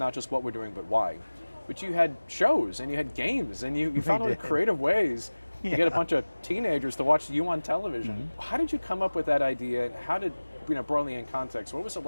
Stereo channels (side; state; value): both; inverted; correlation -1.00